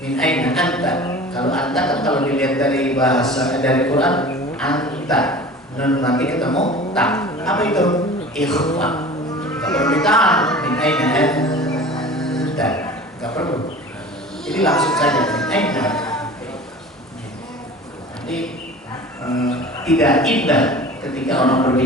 anta. Kalau anta kan kalau dilihat dari bahasa dari Quran anta, dan nanti ketemu tak. Apa itu? Ikhfa. Gak perlu ditahan. Min aina anta. Gak perlu. Jadi langsung saja min aina. Nanti tidak indah ketika orang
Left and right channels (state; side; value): normal; both; correlation 0.40